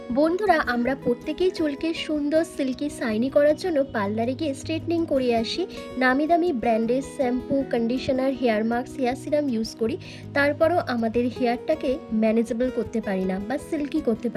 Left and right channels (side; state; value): both; identical; correlation 1.00